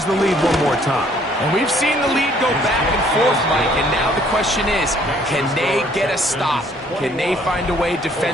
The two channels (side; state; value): both; normal; correlation 0.62